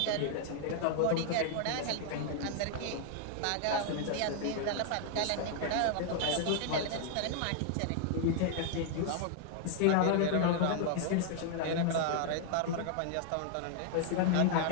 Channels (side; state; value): both; different; correlation 0.00